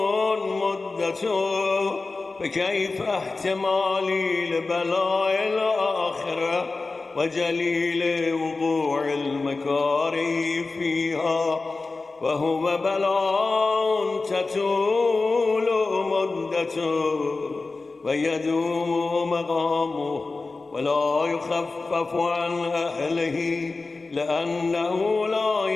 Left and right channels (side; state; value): right; quieter; 3.7 dB